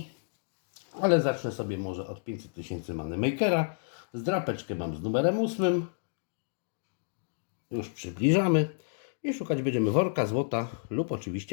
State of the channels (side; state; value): right; silent; digital silence